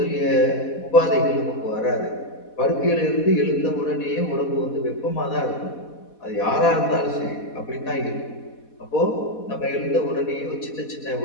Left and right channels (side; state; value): right; late; 4.1 ms